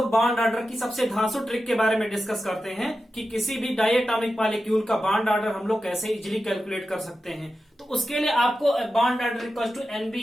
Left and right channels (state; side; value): normal; both; correlation 0.92